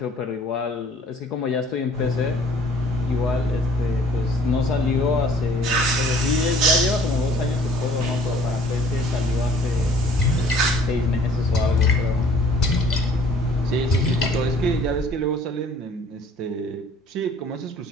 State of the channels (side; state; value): both; normal; correlation 0.55